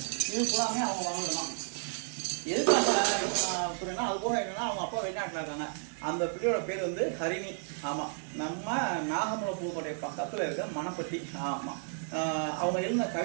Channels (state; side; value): silent; left; digital silence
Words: இது பூராமே அவங்க வாங்கலாம். எதுக்காக அப்படின்னா அது போக என்னன்னா அவங்க அப்பா வெளிநாட்டில் இருக்காங்க. அந்த பிள்ளையோட பேர் வந்து ஹரிணி. ஆமாம், நம்ம நாகமலை புதுக்கோட்டை பக்கத்தில் இருக்க மணப்பட்டி. ஆமாம், அவங்க எழுதின